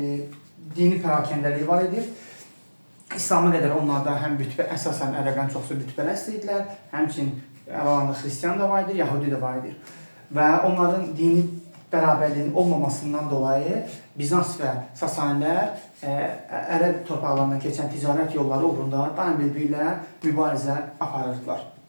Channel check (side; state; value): both; inverted; correlation -1.00